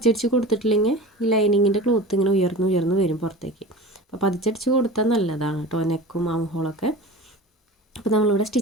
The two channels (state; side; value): normal; both; correlation 0.34